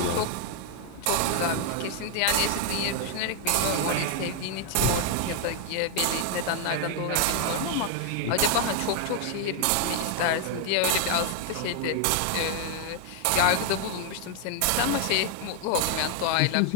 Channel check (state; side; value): different; both; correlation 0.00